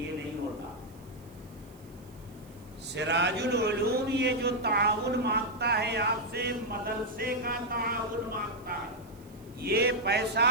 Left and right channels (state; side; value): noise; right; hiss, 27 dB below the sound